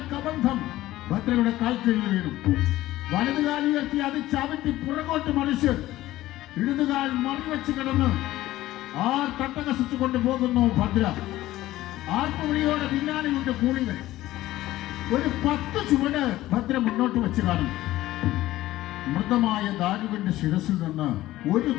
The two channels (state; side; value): quieter; right; 15.8 dB